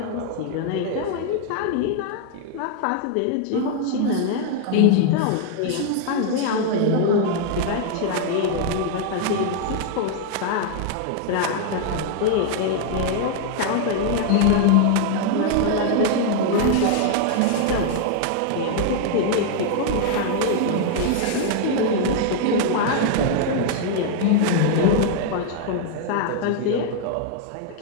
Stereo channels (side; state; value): both; different; correlation 0.00